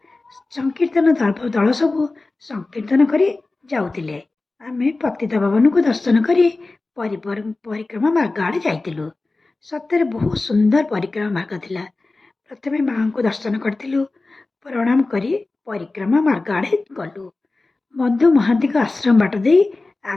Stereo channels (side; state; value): right; quieter; 3.3 dB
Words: ସଂକୀର୍ତ୍ତନ ଦଳ ସବୁ ସଂକୀର୍ତ୍ତନ କରି ଯାଉଥିଲେ। ଆମେ ପତିତ ପାବନକୁ ଦର୍ଶନ କରି ପରିକ୍ରମା ମାର୍ଗ ଆଡ଼େ ଯାଇଥିଲୁ। ସତରେ ବହୁତ ସୁନ୍ଦର ପରିକ୍ରମା ମାର୍ଗ ଥିଲା। ପ୍ରଥମେ ମାଙ୍କୁ ଦର୍ଶନ କରିଥିଲୁ, ପ୍ରଣାମ କରି ପରିକ୍ରମା ମାର୍ଗ ଆଡ଼େ ଗଲୁ। ମଧୁ ମହାନ୍ତିଙ୍କ ଆଶ୍ରମ ବାଟ ଦେଇ